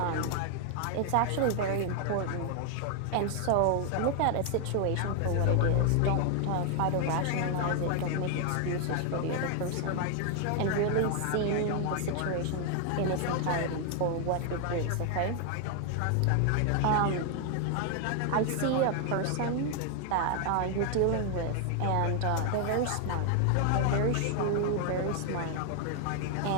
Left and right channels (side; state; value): both; different; correlation 0.00